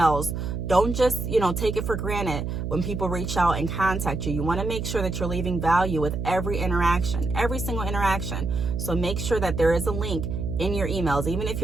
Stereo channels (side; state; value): right; noise; hum, 3 dB below the sound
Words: don't just, take it for granted when people reach out and contact you. You want to make sure that you're leaving value with every interaction, every single interaction. So make sure that there is a link in your emails. Even if